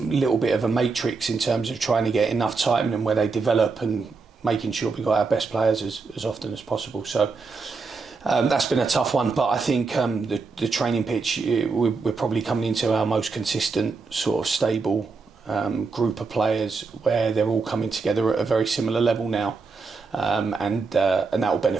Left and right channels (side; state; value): left; quieter; 4.4 dB